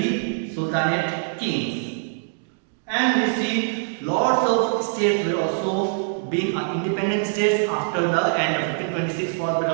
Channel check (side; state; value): left; silent; digital silence